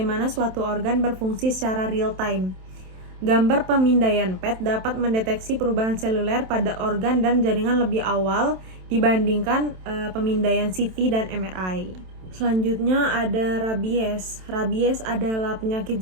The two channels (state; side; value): late; left; 27 ms